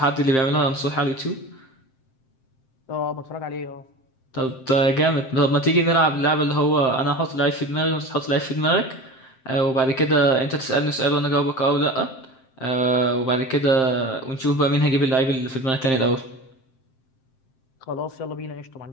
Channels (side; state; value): right; late; 7.6 ms